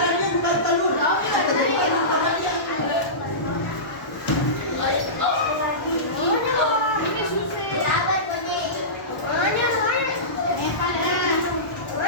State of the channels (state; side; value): late; right; 1.0 ms